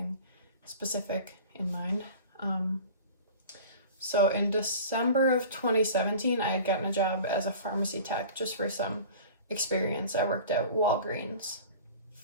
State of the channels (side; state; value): both; inverted; correlation -0.41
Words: specific in mind. So in December of 2017, I had gotten a job as a pharmacy tech just for some experience. I worked at Walgreens